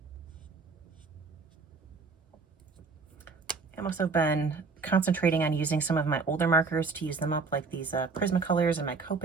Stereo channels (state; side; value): quieter; left; 4.4 dB